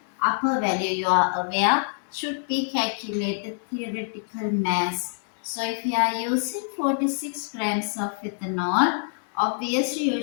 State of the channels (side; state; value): right; silent; 59 dB below the other